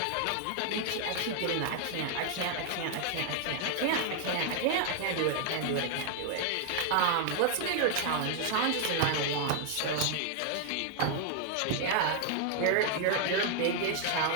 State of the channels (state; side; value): different; both; correlation 0.00